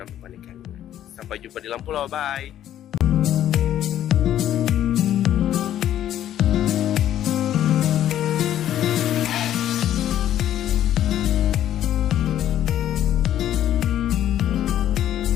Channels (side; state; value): right; quieter; 11.5 dB